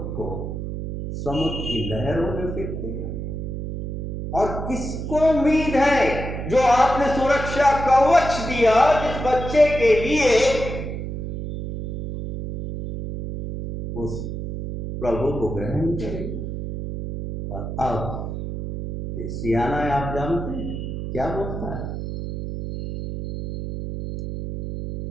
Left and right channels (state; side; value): noise; right; hum, 6 dB below the sound